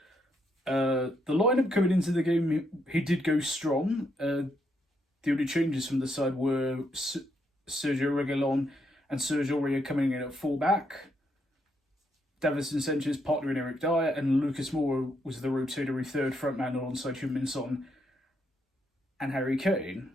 The lineup coming into the game, he did go strong. The only changes from the side were Sergio Reguilon and Sergio Aurier coming in at full-back. Davinson Sanchez partnering Eric Dyer, and Lucas Moura was the rotatory third frontman alongside Heung-Min Son and Harry Kane.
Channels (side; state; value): both; normal; correlation 0.77